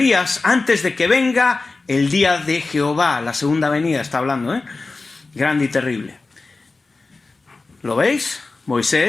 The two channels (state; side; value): quieter; right; 3.7 dB